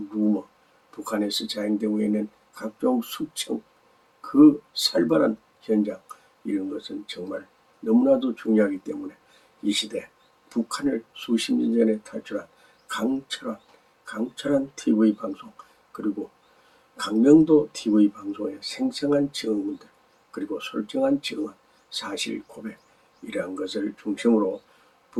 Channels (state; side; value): identical; both; correlation 1.00